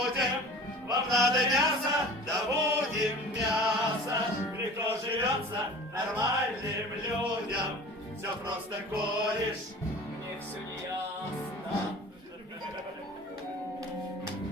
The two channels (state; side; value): normal; both; correlation 0.40